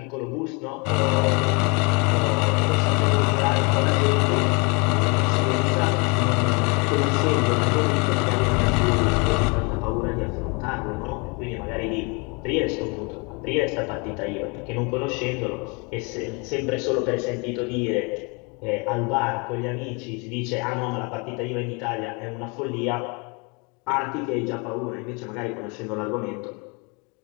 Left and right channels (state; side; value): quieter; right; 31.1 dB